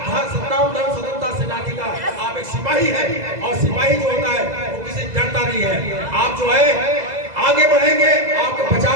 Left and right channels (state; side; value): late; left; 2.0 ms